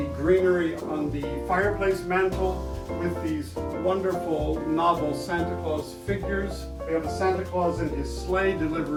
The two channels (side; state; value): both; identical; correlation 1.00